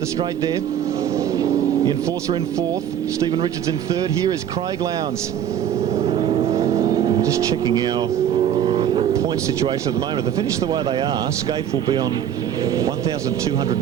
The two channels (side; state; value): left; quieter; 9.7 dB